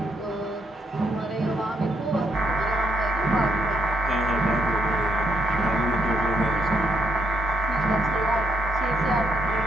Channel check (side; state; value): both; normal; correlation 0.74